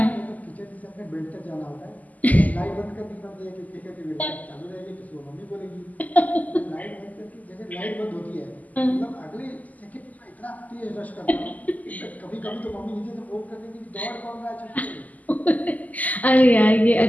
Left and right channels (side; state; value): right; late; 0.078 ms